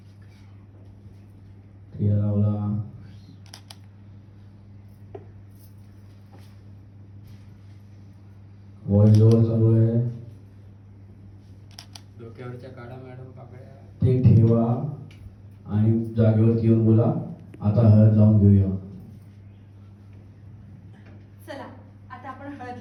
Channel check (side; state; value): both; identical; correlation 1.00